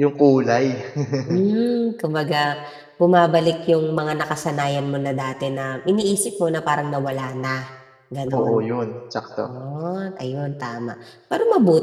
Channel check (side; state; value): both; identical; correlation 1.00